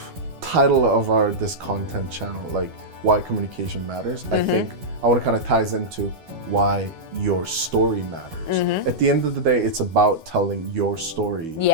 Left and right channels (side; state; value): left; late; 11 ms